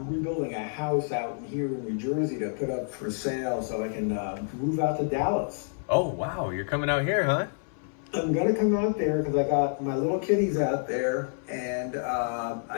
rebuilding a house out here in New Jersey to put up for sale so I can move out to Dallas. Oh, wow. You're coming out here, huh? I'm gonna come out there because I got my little kitties out there, and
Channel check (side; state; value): right; silent; 59 dB below the other